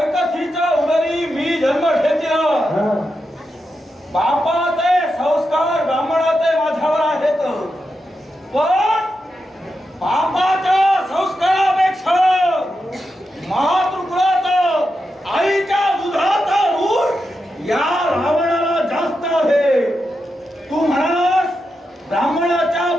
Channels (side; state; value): both; normal; correlation 0.87